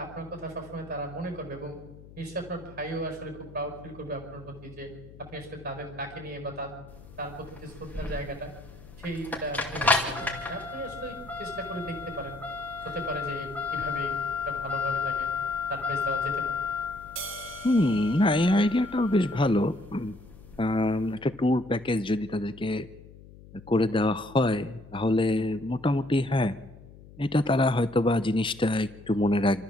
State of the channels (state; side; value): noise; left; hum, 19 dB below the sound